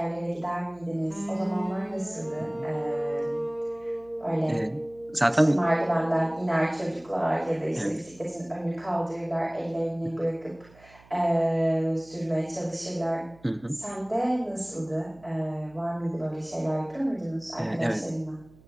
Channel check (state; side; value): noise; right; hum, 25 dB below the sound